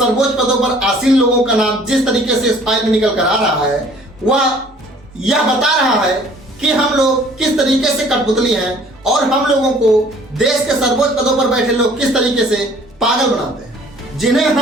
पदों पर आसीन लोगों का नाम जिस तरीके से इस फाइल में निकल कर आ रहा है, वह यह बता रहा है कि हम लोग किस तरीके से कठपुतली हैं और हम लोगों को देश के सर्वोच्च पदों पर बैठे लोग किस तरीके से पागल बनाते हैं। जिन्हें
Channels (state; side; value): normal; both; correlation 0.54